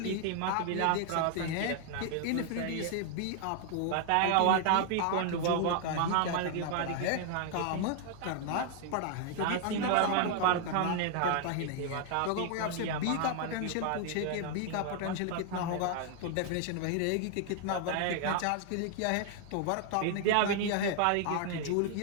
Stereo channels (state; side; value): different; both; correlation 0.00